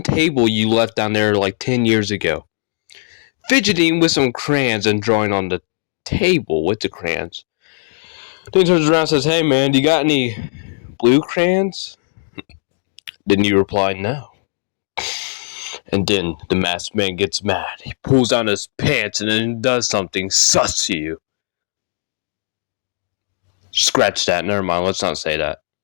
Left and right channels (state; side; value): silent; right; digital silence